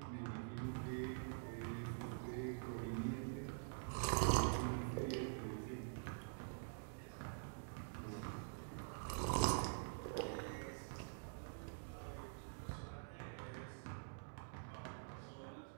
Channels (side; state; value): left; silent; digital silence